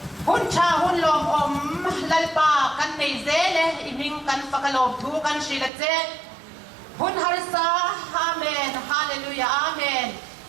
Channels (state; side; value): drops out; left; at 5.7 s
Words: hun cha hun lom om lalpa kan nei zele iming kan fakalom thu kan shila che hun harsa amen hallelujah amen